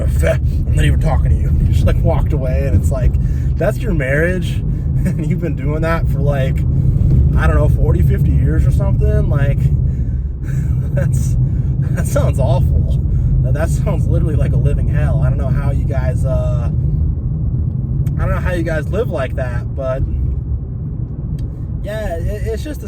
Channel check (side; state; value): both; identical; correlation 1.00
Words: not even talking to you. He just like walked away, and it's like, that's your marriage? And you've been doing that for like, I don't know, 40, 50 years or something? Like, that sounds awful. That sounds literally like a living hell. I don't know how you guys live like that, but yeah, it's just the